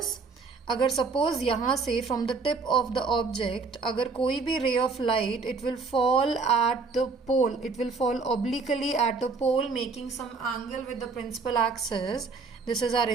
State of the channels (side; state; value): left; quieter; 4.5 dB